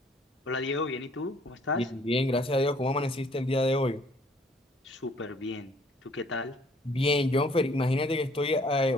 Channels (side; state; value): both; normal; correlation 0.60